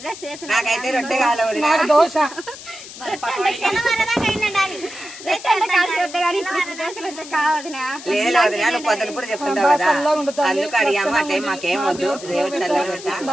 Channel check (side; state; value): left; noise; hiss, 14 dB below the sound